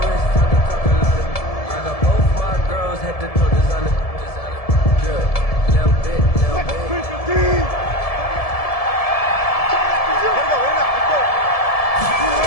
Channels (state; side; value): late; right; 1.7 ms